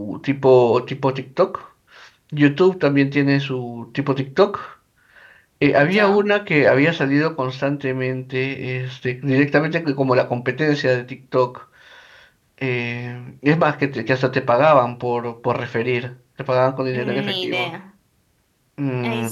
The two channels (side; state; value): both; identical; correlation 1.00